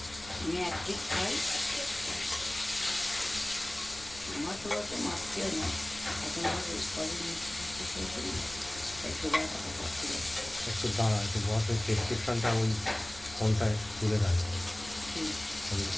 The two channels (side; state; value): left; noise; rumble, 18 dB below the sound